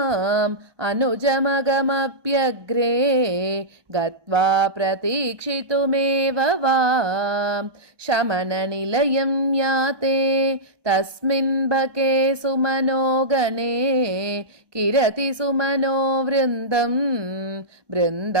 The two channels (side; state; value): left; late; 1.2 ms